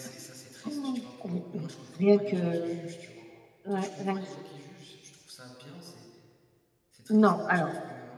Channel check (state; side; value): identical; both; correlation 1.00